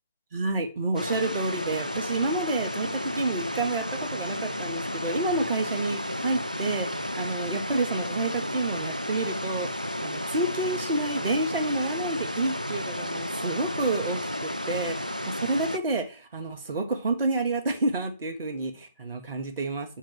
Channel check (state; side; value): inverted; both; correlation -0.59